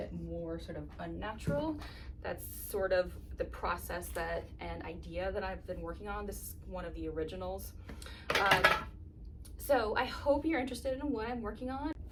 more sort of unnatural. That's sort of the process that and idea that I've been working on. This is one of the originals. So I hope you're interested in what I'm working on.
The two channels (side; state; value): both; identical; correlation 1.00